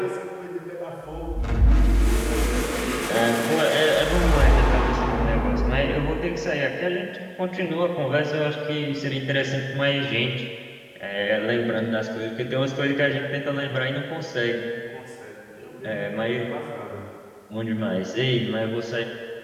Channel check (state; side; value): identical; both; correlation 1.00